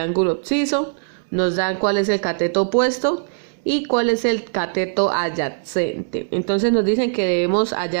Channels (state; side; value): silent; left; digital silence